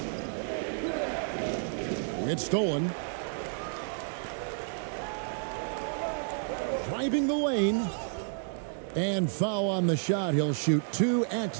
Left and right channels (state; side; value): silent; left; digital silence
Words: It's stolen. Driving the lane. And foul on the shot. He'll shoot 2 at